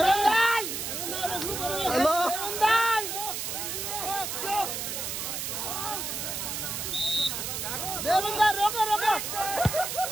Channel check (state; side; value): noise; right; hiss, 4 dB below the sound